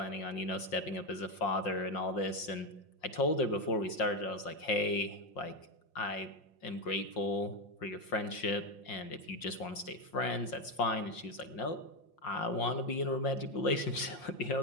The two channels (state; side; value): late; right; 5.7 ms